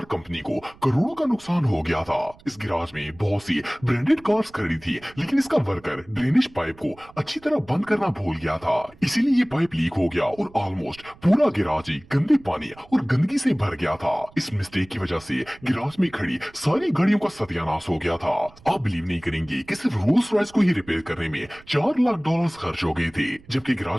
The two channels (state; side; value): noise; right; rumble, 25 dB below the sound